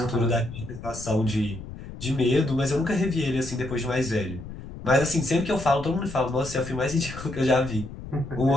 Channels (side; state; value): left; noise; rumble, 12 dB below the sound